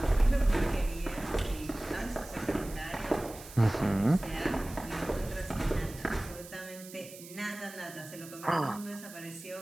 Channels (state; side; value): noise; right; hiss, 16 dB below the sound